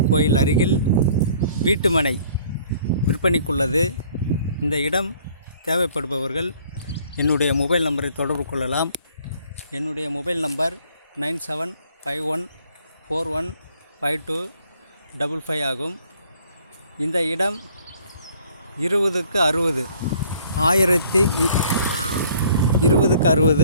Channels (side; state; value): both; inverted; correlation -0.57